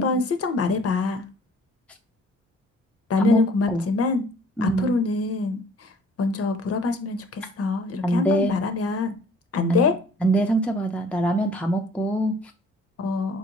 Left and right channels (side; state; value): both; normal; correlation 0.55